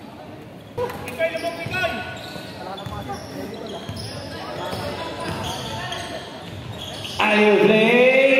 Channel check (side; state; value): both; identical; correlation 1.00